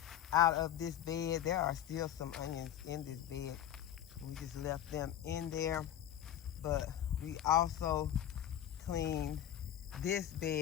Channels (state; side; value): quieter; right; 10.9 dB